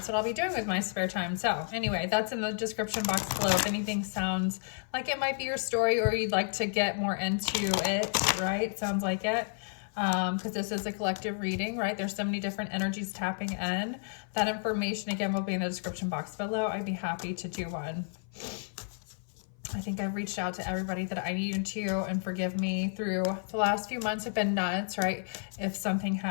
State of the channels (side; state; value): right; silent; 56 dB below the other